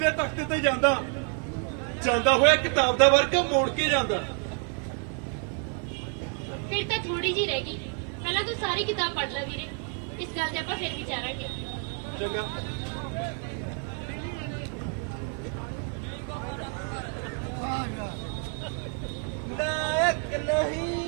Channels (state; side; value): quieter; left; 39.2 dB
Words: ਤਖਤ ਤੇ ਜਾਂਦਾ ਹੋਇਆ ਕਿਤਾਬ ਦਾ ਵਰਕ ਮੋੜ ਕੇ ਜਾਂਦਾ। ਫਿਰ ਤਾਂ ਥੋੜੀ ਜੀ ਰਹਿ ਗਈ। ਪਹਿਲਾਂ ਤੂੰ ਸਾਰੀ ਕਿਤਾਬ ਪੜ੍ਹ ਲੈ ਵੀਰੇ, ਇਸ ਗੱਲ ਤੇ ਆਪਾਂ ਫਿਰ ਵਿਚਾਰਾਂਗੇ। ਚੰਗਾ। नायक